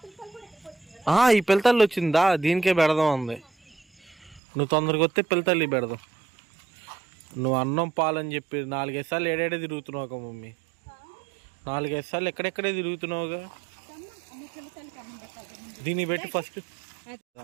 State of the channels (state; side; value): drops out; left; at 4.4 s